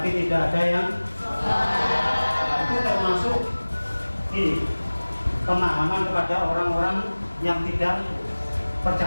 tidak ada yang itu termasuk ini pemahaman kepada orang-orang yang tidak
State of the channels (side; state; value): both; inverted; correlation -1.00